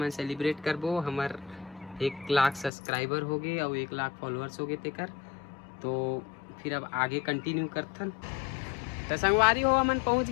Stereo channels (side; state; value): right; drops out; at 2.7 s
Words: सेलिब्रेट करबो। हमार 1 लाख सब्सक्राइबर हो गए और 1 लाख फॉलोअर्स हो गए तेकर। तो फिर अब आगे कंटिन्यू करथन। तो संगवारी हो, हमन पहुँच